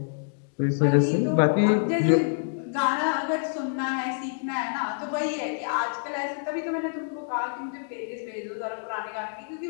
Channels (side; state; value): right; silent; digital silence